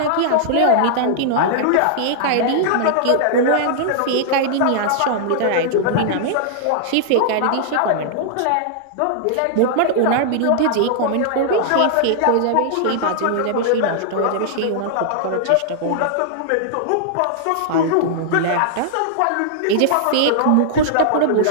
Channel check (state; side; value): different; both; correlation -0.01